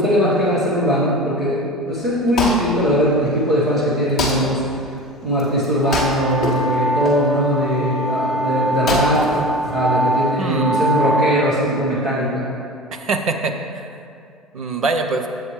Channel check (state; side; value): normal; both; correlation 0.34